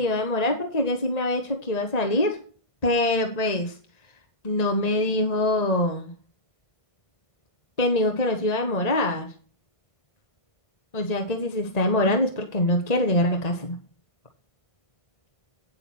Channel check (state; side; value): late; right; 1.9 ms